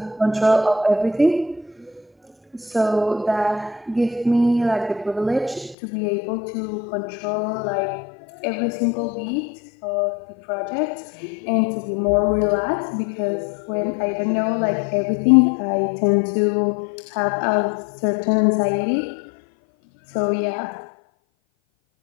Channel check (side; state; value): right; drops out; at 5.8 s